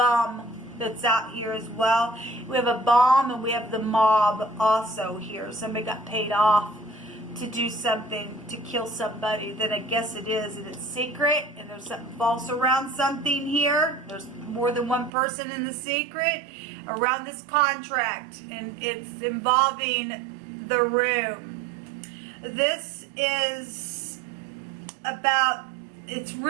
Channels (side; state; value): left; drops out; at 15.1 s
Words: that's out here as well. We have a bomb and we have the mob also here. Somebody got paid off to do something, to kill somebody. Then I guess it is, and it's secret, and there's something false around something here. There's more than one person in the secret around this contract, and it's involving the room. This is about, it's